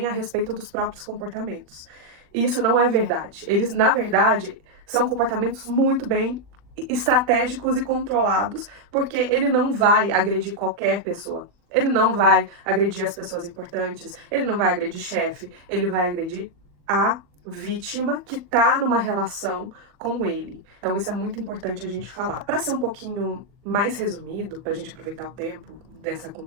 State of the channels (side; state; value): left; late; 40 ms